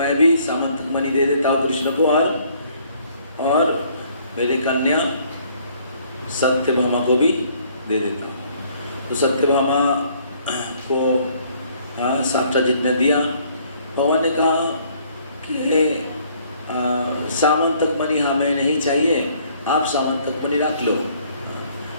भी सामंतक मणि दे देता हूँ कृष्ण को, और मेरी कन्या सत्यभामा को भी दे देता हूँ। तो सत्यभामा को सत्यजित ने दिया। भगवान ने कहा कि सामंतक मणि हमें नहीं चाहिए, आप सामंतक मणि रख लो,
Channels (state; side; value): inverted; both; correlation -0.62